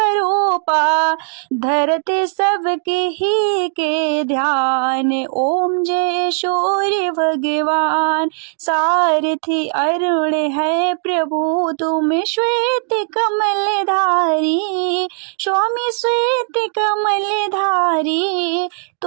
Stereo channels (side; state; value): left; silent; digital silence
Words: धरते सबके ही के ध्यान। ओम जय सूर्य भगवान, सारथी अरुण है प्रभु, तुम श्वेत कमल धारी, स्वामी श्वेत कमल धारी,